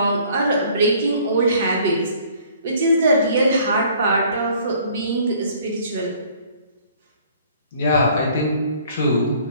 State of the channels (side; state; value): both; inverted; correlation -0.57